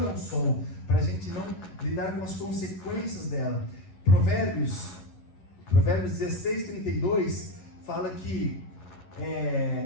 ao sol, para a gente não lidar com as consequências dela. Provérbios 16:32 fala que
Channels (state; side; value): late; right; 11 ms